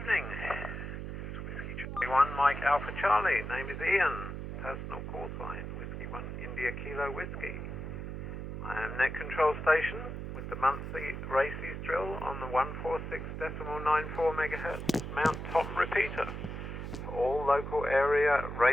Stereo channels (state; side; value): noise; right; hum, 6 dB below the sound